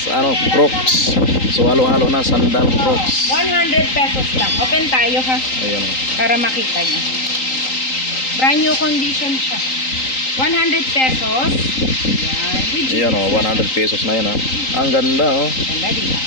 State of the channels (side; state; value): right; late; 3.8 ms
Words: Ano, crocs. So halo-halo na sandal, crocs. 100 pesos lang. Open tayo ha. Ayun oh. Para makita nyo. Brand new condition siya. 100 pesos. Yan. With Ayun oh, 100 pesos na yan oh. Ang ganda oh. Ganda dito.